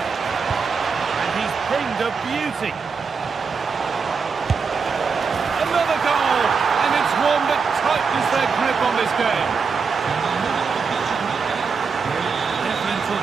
And he's pinged a beauty. Another goal! And it's one that tightens their grip on this game.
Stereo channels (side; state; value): left; quieter; 5.3 dB